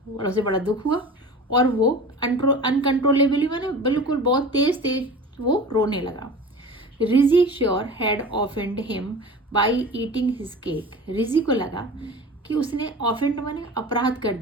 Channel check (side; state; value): both; normal; correlation 0.36